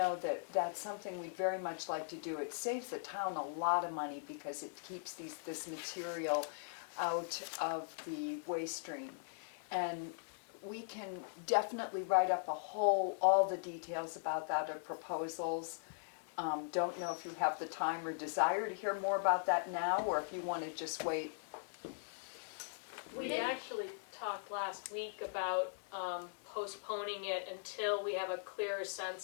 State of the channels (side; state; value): right; silent; digital silence